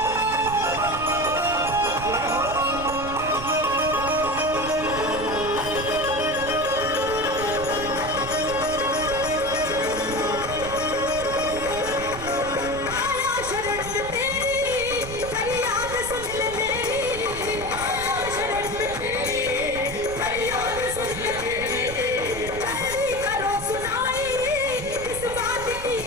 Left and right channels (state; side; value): noise; right; rumble, 11 dB below the sound